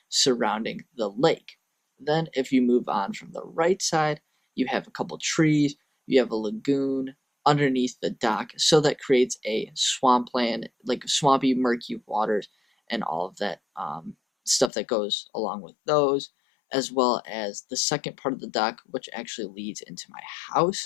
surrounding the lake. Then, if you move on from the right side, you have a couple trees, you have a lagoon underneath the dock, so that creates a swampland, like swampy, murky waters, and all of that stuff that goes along with those, as well as the second part of the dock, which actually leads into my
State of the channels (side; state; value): right; drops out; at 14.7 s